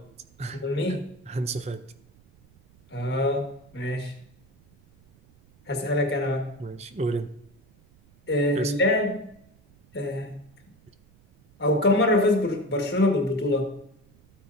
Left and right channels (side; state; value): right; noise; rumble, 29 dB below the sound